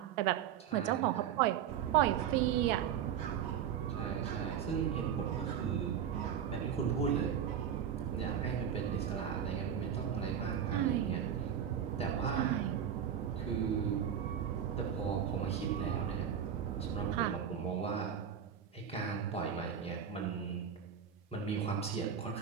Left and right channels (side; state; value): left; quieter; 8.7 dB